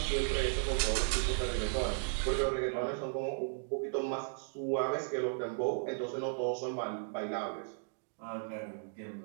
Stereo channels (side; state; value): left; silent; digital silence